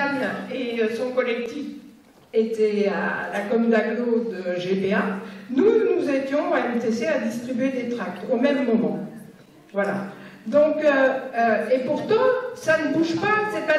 et son collectif étaient à la com d'agglo de GPA. Nous étions à MTC à distribuer des tracts au même moment. Voilà. Donc, et pourtant, ça ne bouge pas, c'est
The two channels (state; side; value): identical; both; correlation 1.00